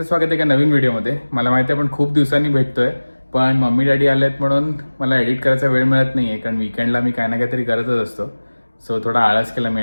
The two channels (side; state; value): both; inverted; correlation -1.00